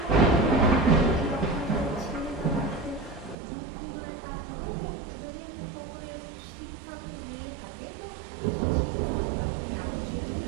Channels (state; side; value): drops out; left; at 3.4 s